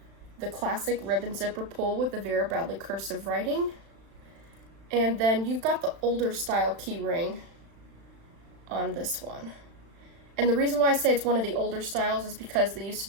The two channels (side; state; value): left; late; 36 ms